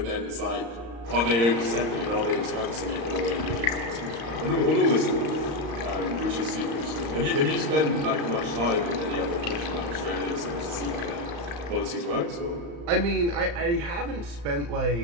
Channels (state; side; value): late; left; 35 ms